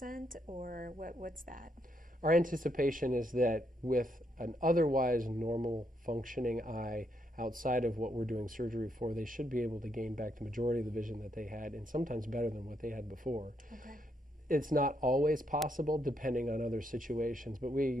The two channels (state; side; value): normal; both; correlation 0.77